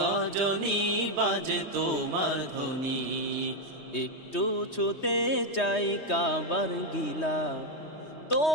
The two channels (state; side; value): late; right; 3.2 ms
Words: বাজে তোমার ধ্বনি। একটু ছুতে চাই কাবার গিলা,